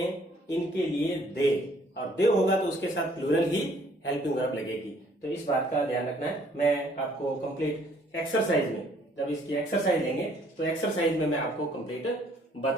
इनके लिए दे, और दे होगा तो उसके साथ प्लूरल ही हेल्पिंग वर्ब लगेगी। तो इस बात का ध्यान रखना है। मैं आपको कंप्लीट एक्सरसाइज में, जब इसकी एक्सरसाइज लेंगे तो एक्सरसाइज में मैं आपको कंप्लीट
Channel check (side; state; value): both; normal; correlation 0.62